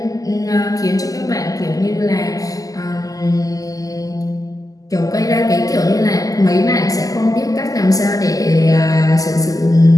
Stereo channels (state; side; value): late; right; 0.17 ms